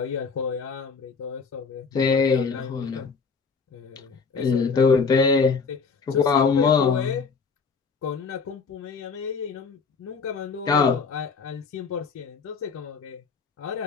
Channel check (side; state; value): right; quieter; 5.1 dB